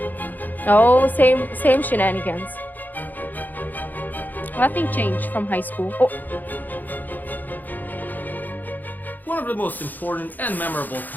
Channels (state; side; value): late; right; 0.085 ms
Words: Oh, same shenanigans. Nothing changed from high school. Oh, One of the most important and memorable